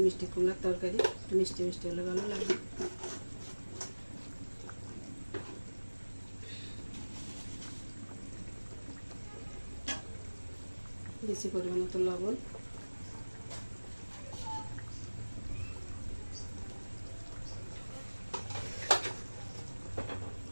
মিষ্টি কুমড়ার তরকারি একটু মিষ্টি মিষ্টি হলে ভালো লাগবে। বেশি পরিমাণ মতো লবণ,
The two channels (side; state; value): both; inverted; correlation -1.00